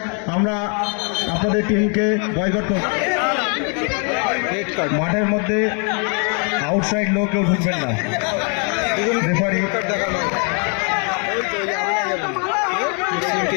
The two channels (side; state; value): right; quieter; 38.4 dB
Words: আমরা আপনাদের টিমকে বয়কট করব। মাঠের মধ্যে আউটসাইড লোক কেউ ঢুকবেন না। রেফারি